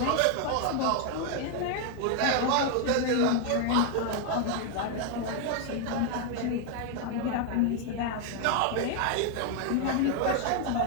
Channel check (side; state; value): both; different; correlation 0.00